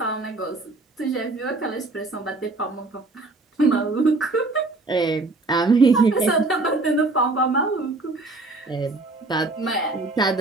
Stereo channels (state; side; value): quieter; left; 3.2 dB